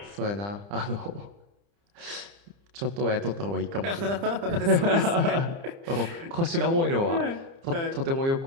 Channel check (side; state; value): left; late; 30 ms